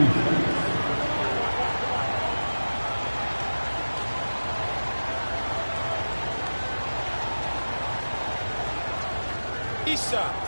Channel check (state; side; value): inverted; both; correlation -1.00